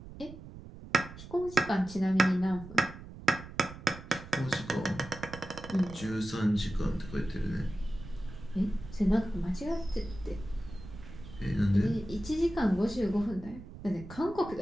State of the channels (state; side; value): noise; right; rumble, 14 dB below the sound